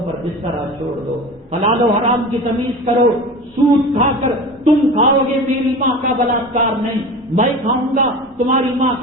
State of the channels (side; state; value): both; normal; correlation 0.33